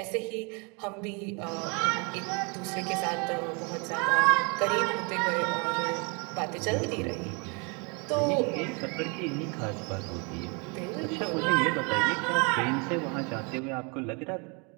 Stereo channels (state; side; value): quieter; left; 32.5 dB